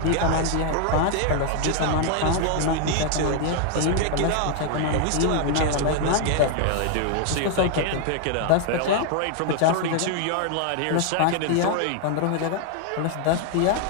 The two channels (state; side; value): different; both; correlation 0.00